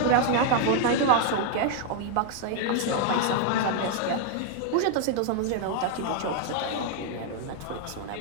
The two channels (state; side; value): different; both; correlation 0.00